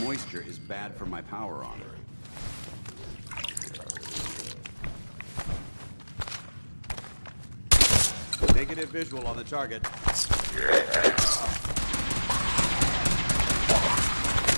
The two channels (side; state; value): both; inverted; correlation -1.00